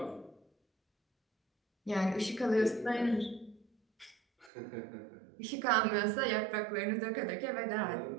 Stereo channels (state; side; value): drops out; left; at 4.5 s